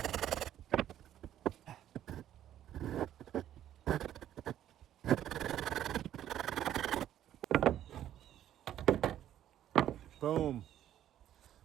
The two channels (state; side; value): quieter; left; 11.5 dB